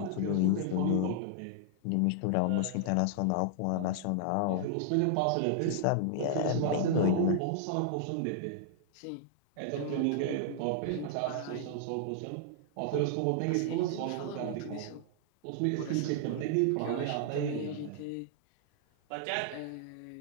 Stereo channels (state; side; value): different; both; correlation -0.01